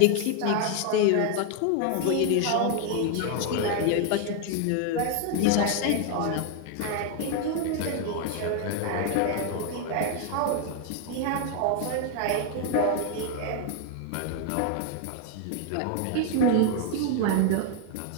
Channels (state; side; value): different; both; correlation 0.00